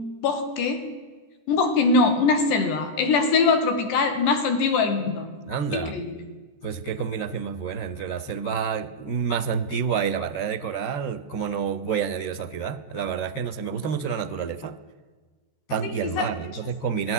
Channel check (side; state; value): right; late; 14 ms